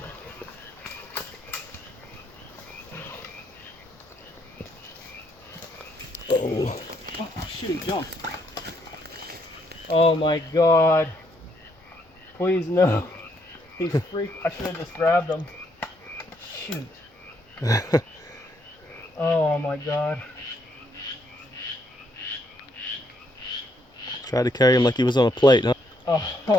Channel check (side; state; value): both; normal; correlation 0.73